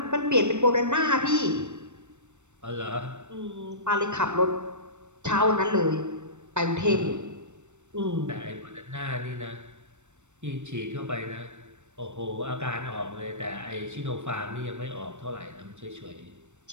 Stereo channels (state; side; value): late; left; 0.84 ms